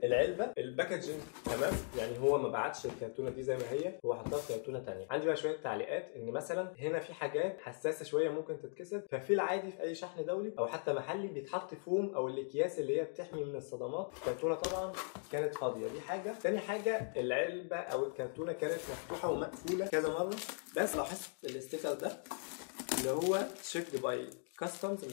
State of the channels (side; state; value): right; silent; 52 dB below the other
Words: العلبه الباكجينج تمام، يعني هو ما بعتش الكرتونه دي زي ما هي، هو حطها في كرتونه ثانيه. عندي بقى شويه تعليقات ان مثلا هنا في حاجات حساسه شويه ممكن تتكسر، ففي العادي في اي شحن دولي او حتى محلي بيتحط فوم او الاكياس اللي هي بتحمي من الصدمات. الكرتونه طبعا كانت فاضيه، دي حاجه. ثاني حاجه العلبه او الكرتونه كانت مفتوحه ومقفوله كذا مره، بس لاحظت الاستيكر ده اللي هو تشيكد باي كاستمز،